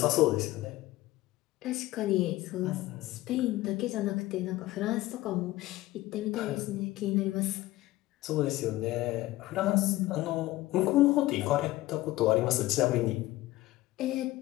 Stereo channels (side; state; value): right; quieter; 17.3 dB